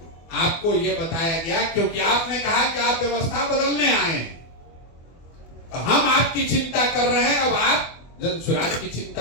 आपको ये बताया गया, क्योंकि आपने कहा कि आप व्यवस्था बदलने आए हैं, तो हम आपकी चिंता कर रहे हैं, अब आप जनसुराज की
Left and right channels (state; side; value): late; right; 24 ms